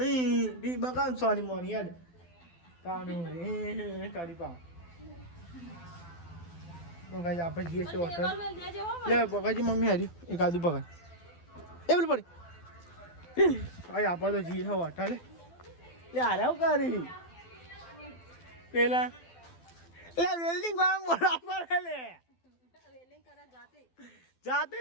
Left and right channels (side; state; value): right; late; 12 ms